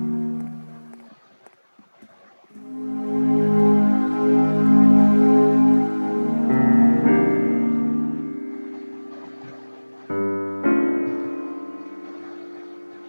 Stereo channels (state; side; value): inverted; both; correlation -1.00